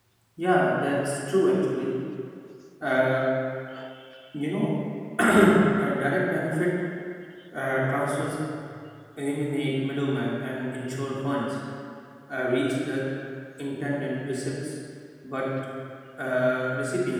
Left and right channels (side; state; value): both; identical; correlation 1.00